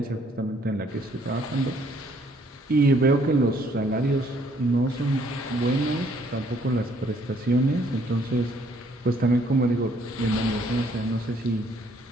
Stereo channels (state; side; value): normal; both; correlation 0.64